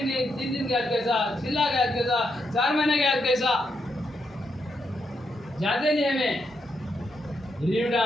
दिन के आज कैसा, 6 लाख के आज कैसा, 4 महीने के आज कैसा, जाते नहीं हमें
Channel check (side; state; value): both; normal; correlation 0.81